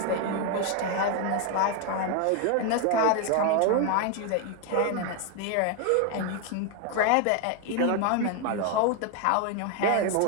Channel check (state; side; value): different; both; correlation 0.01